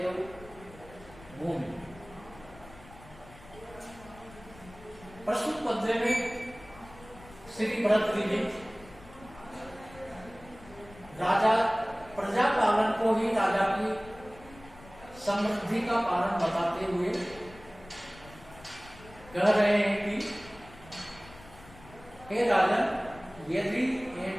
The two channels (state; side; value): noise; left; rumble, 20 dB below the sound